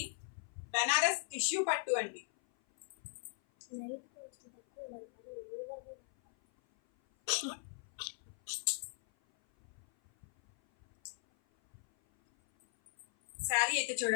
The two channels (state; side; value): silent; right; 52 dB below the other